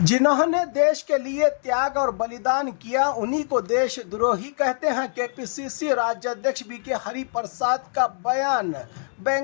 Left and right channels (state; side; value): silent; right; digital silence